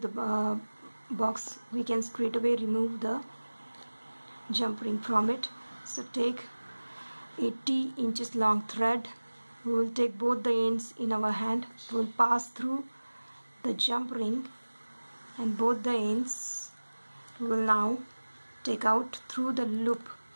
the box, we can straight away remove the jump ring from it. So take 80 inches long thread. We will take both the ends in our hand. We will pass through the jump ring, and both the ends we will now take out through the loop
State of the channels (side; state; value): both; inverted; correlation -1.00